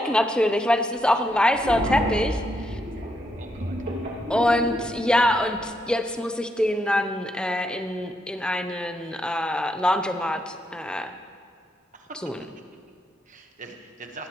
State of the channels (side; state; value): both; normal; correlation 0.78